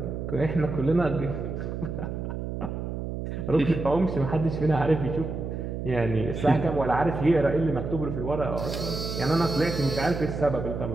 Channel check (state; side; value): noise; right; hum, 5 dB below the sound